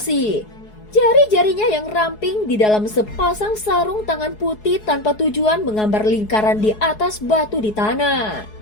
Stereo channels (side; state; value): right; late; 4.7 ms